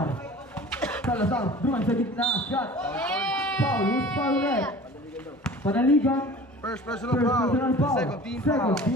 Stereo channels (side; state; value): both; normal; correlation 0.42